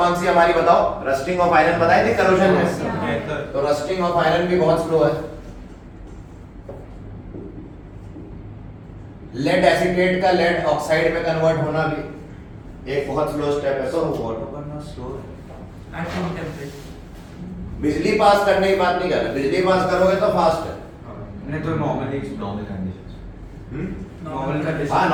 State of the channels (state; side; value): identical; both; correlation 1.00